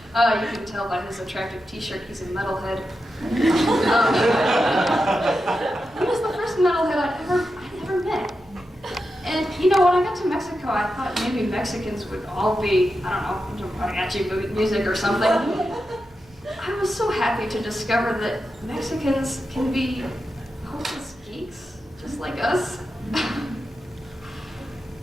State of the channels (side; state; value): right; noise; hum, 28 dB below the sound